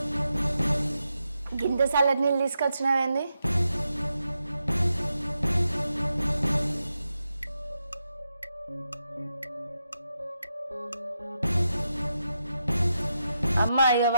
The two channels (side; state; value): both; inverted; correlation -0.86